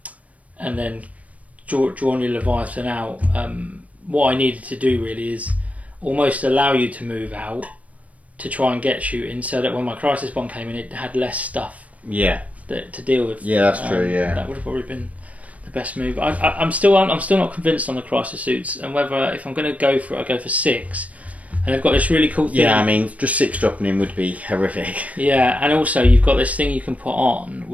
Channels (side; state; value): left; late; 0.068 ms